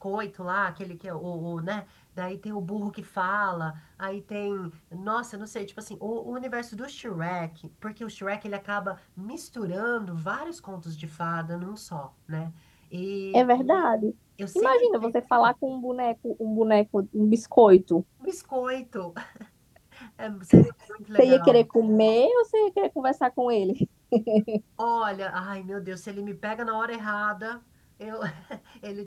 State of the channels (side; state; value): both; identical; correlation 1.00